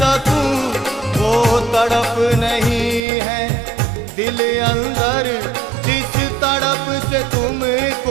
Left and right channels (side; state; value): left; drops out; at 3.0 s